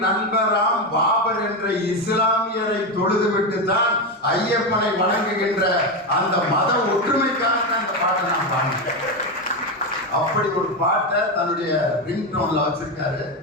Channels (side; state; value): both; normal; correlation 0.12